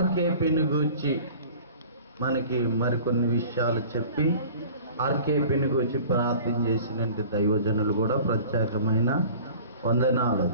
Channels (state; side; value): inverted; both; correlation -0.44